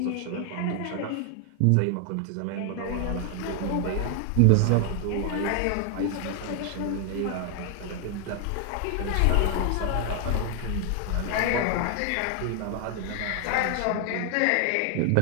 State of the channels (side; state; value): both; different; correlation 0.00